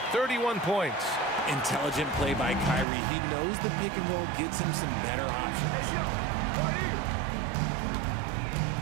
31 points. Intelligent play by Kyrie. He knows the pick and roll gets him some better options.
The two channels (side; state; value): left; drops out; at 2.9 s